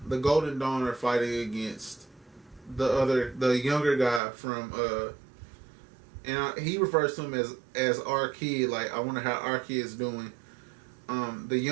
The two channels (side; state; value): left; drops out; at 4.2 s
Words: Golden Dawn are fighting against the younger guy from and he refers to him as our kid. Like, I wonder how our kid's doing. the